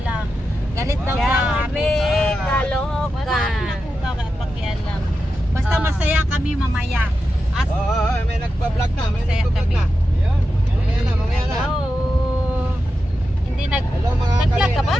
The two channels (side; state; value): both; normal; correlation 0.90